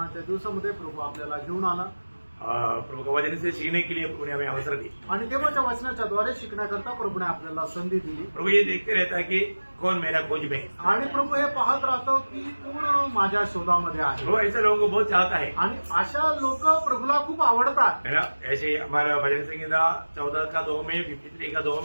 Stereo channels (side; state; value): both; inverted; correlation -1.00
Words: दिवसामध्ये प्रभू आपल्याला घेऊन आला प्रभु का वचन से सीखने के लिए प्रभु ने हमें अवसर दी। आणि देवाच्या वचनाच्या द्वारे शिकण्याकरता प्रभूने आपल्याला संधी दिली। प्रभु ये देखते रहता है कि कौन मेरा खोज में है। आणि प्रभू हे पाहत राहतो की कोण माझ्या शोधामध्ये आहे। वो ऐसे लोगों को बहुत चाहता है आणि अशा लोक प्रभूला खूप आवडतात है ना। ऐसे हमारा भजन संहिता 14 का 2 में 53 का 2